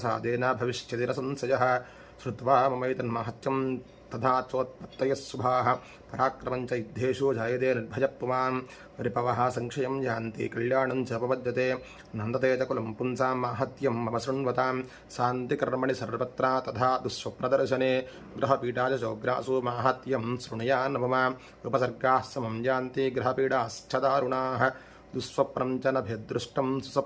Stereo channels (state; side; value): identical; both; correlation 1.00